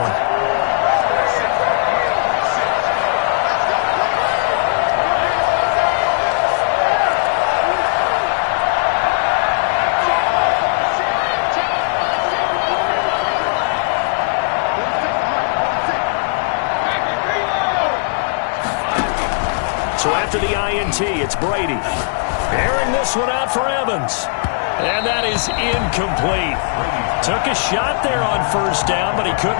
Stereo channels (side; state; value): right; silent; digital silence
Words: So after the INT, it's Brady. Airing this one out for Evans. And that is incomplete. Took a shot there on 1st down, but he